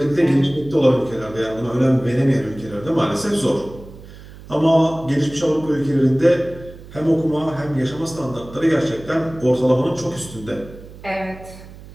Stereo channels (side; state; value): right; noise; hum, 18 dB below the sound